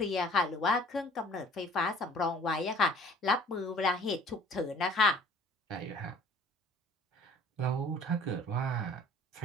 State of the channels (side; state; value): both; normal; correlation 0.50